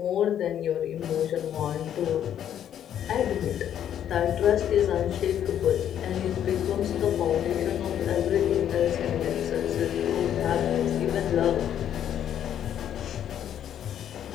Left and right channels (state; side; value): quieter; right; 10.0 dB